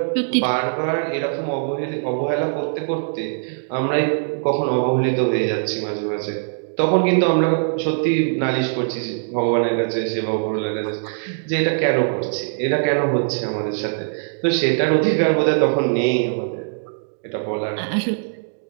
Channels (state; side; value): silent; left; digital silence